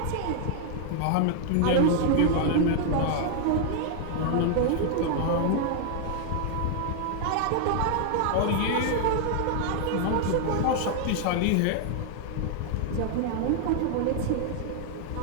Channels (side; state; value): both; different; correlation 0.00